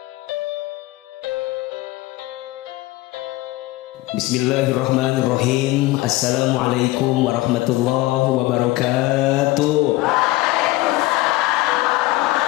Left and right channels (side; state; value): right; quieter; 18.8 dB